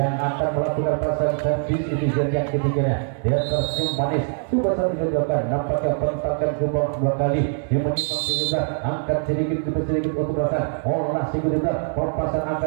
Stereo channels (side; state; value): left; silent; 63 dB below the other